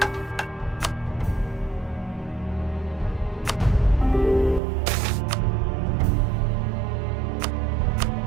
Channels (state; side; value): drops out; left; at 4.6 s